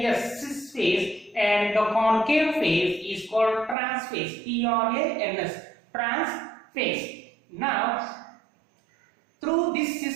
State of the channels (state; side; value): drops out; left; at 3.8 s